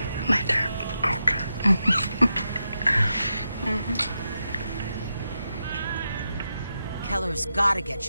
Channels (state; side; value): inverted; both; correlation -0.87